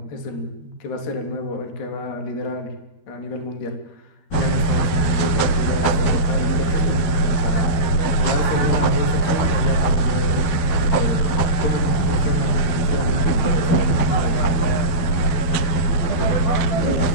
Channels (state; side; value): late; right; 12 ms